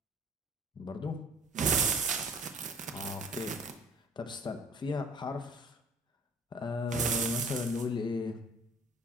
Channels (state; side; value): normal; both; correlation 0.51